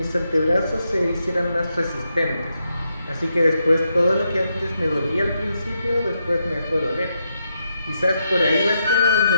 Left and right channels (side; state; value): both; inverted; correlation -0.82